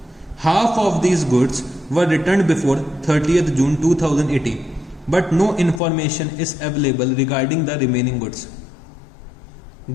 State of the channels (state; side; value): drops out; right; at 5.8 s